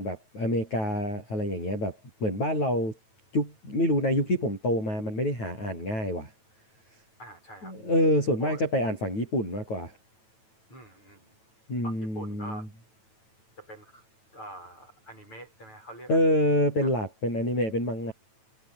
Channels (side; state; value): right; late; 9.1 ms